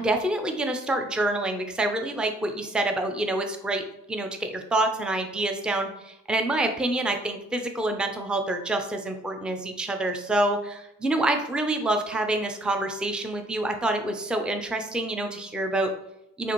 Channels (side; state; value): both; normal; correlation 0.62